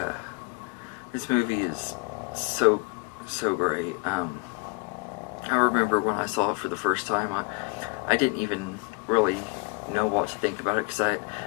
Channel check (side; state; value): right; quieter; 31.2 dB